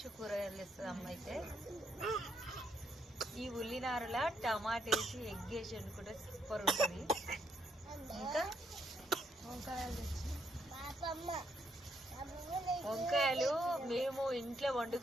కూరగాయలు తెస్తుంది అమ్మ అయితే. ఈ ఉల్లినారల టమాటా వేసి ఎగ్ వేసి వండుకుంటే సూపర్ ఉంటుంది. ఇంకా వంకాయలు మేము ఇంట్లో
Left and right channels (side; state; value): both; normal; correlation 0.74